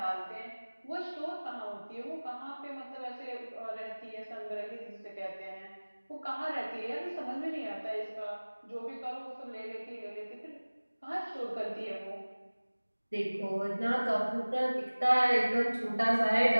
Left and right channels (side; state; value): both; inverted; correlation -1.00